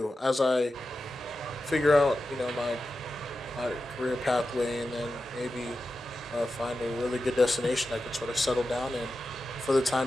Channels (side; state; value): both; normal; correlation 0.92